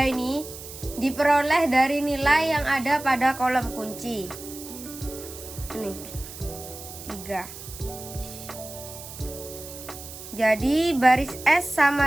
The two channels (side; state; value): right; noise; hiss, 13 dB below the sound